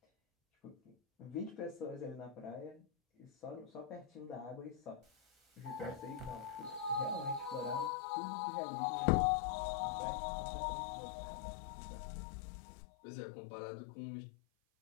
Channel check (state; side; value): drops out; right; at 7.9 s